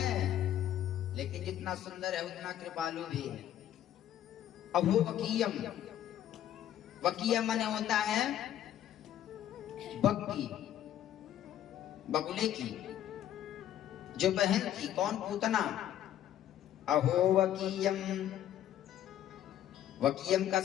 लेकिन जितना सुंदर है उतना कृपालु भी है। अभो वकीयम, वकीयम माने होता है बग्गी, बगुले की जो बहन थी। कौन? पूतना। अहो वकीयम, वकीयम का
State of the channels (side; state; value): right; quieter; 11.5 dB